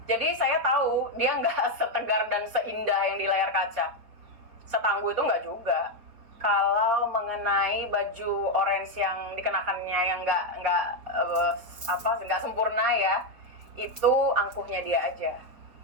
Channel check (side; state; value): left; late; 4.5 ms